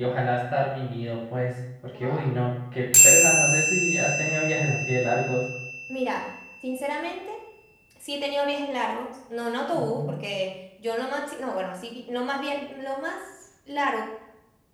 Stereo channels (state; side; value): identical; both; correlation 1.00